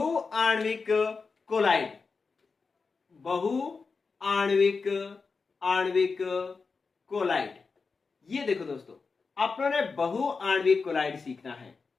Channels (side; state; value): right; quieter; 4.7 dB